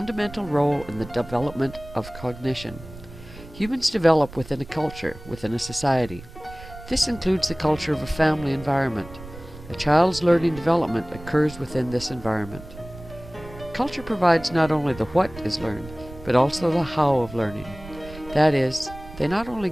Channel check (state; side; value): noise; right; rumble, 16 dB below the sound